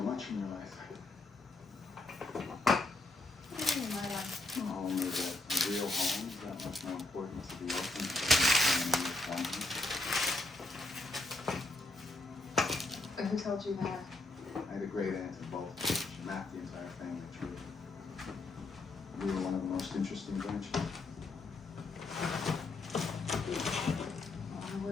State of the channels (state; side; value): quieter; right; 3.1 dB